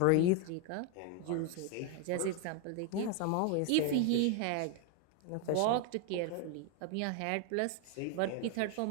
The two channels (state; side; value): different; both; correlation 0.01